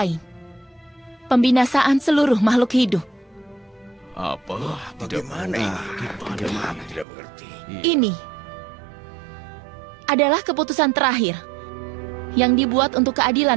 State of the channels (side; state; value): left; drops out; at 7.1 s